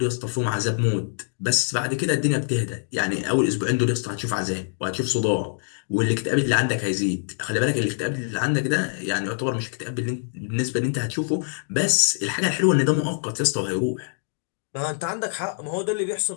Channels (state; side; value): silent; right; digital silence